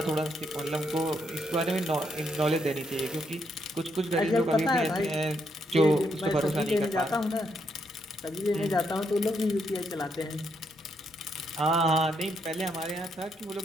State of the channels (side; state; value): both; normal; correlation 0.77